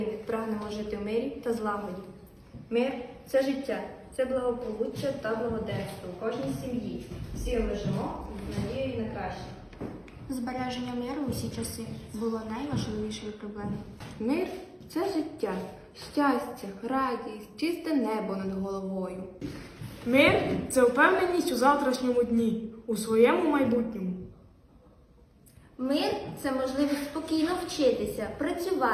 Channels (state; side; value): identical; both; correlation 1.00